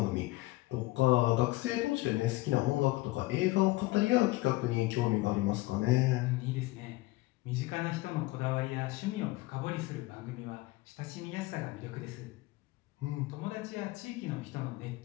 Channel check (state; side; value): quieter; right; 20.2 dB